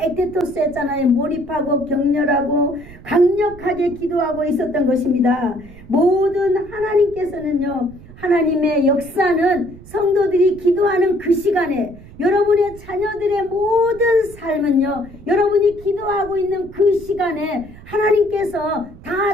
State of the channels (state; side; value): noise; right; rumble, 19 dB below the sound